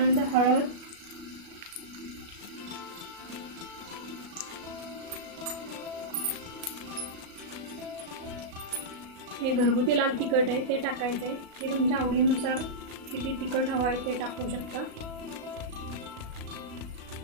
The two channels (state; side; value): late; left; 36 ms